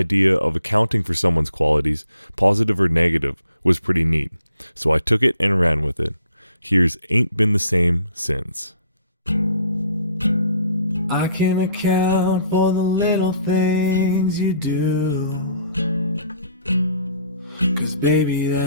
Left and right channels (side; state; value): both; inverted; correlation -0.63